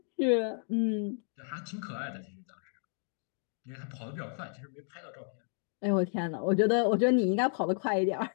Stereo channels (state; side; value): silent; right; 56 dB below the other